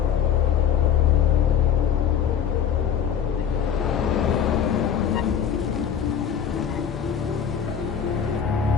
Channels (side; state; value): right; quieter; 8.4 dB